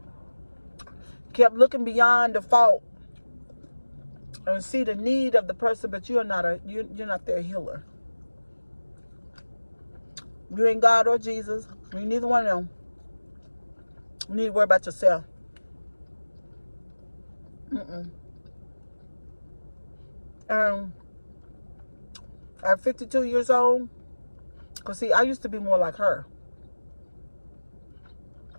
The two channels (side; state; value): both; inverted; correlation -1.00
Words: Kept looking beyond the fault and see the need of the person, but you're not their healer. You ain't God or Jesus. You neither one of them. You need to worry about yourself. At 52 years old, because see, I used to be more like her,